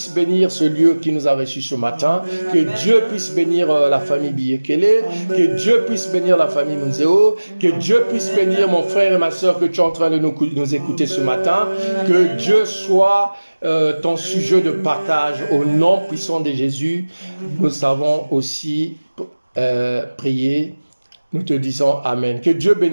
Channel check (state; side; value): inverted; both; correlation -1.00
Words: bénir ce lieu qui nous a reçus ce matin, que Dieu puisse bénir la famille Biyekele, que Dieu puisse bénir la famille Munzeo, que Dieu puisse bénir mon frère et ma soeur que tu es en train de nous écouter ce matin, que Dieu soit ton sujet de partage au nom puissant de Jésus. Nous avons aussi prié, nous te disons Amen. Que Dieu